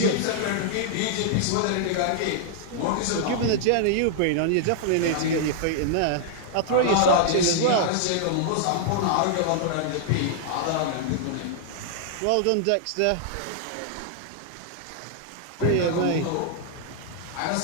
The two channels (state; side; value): different; both; correlation -0.01